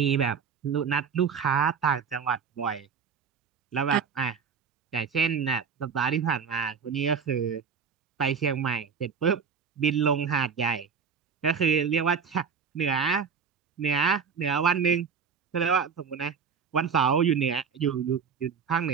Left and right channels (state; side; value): quieter; left; 6.3 dB